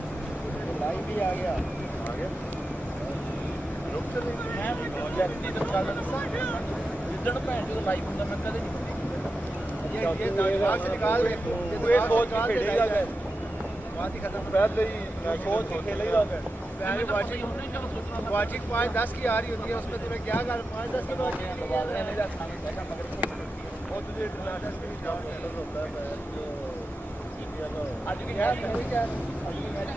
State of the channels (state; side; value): normal; both; correlation 0.90